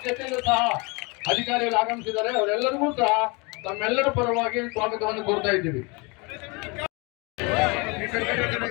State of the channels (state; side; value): quieter; right; 28.8 dB